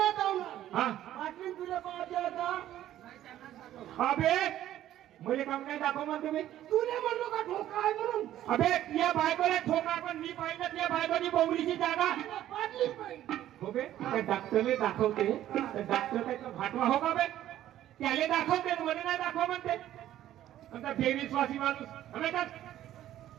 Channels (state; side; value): quieter; left; 12.7 dB